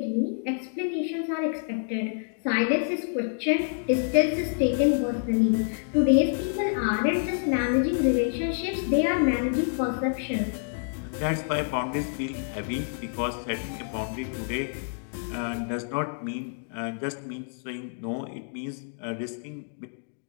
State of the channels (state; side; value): silent; right; digital silence